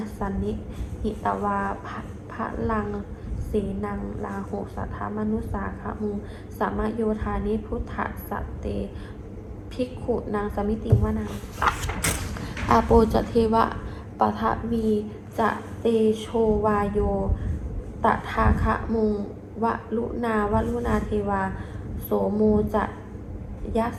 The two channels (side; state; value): both; identical; correlation 1.00